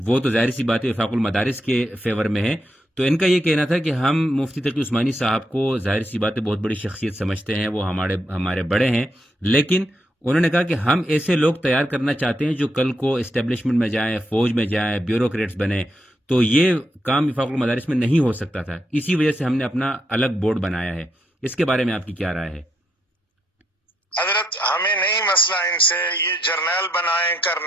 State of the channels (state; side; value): normal; both; correlation 0.79